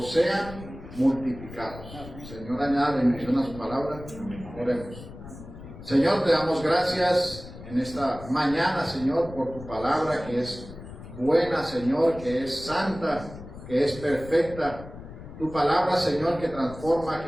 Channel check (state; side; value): noise; left; rumble, 14 dB below the sound